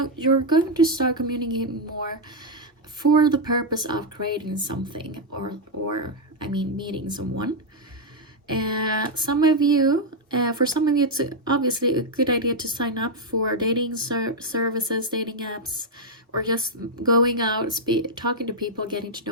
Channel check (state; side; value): normal; both; correlation 0.00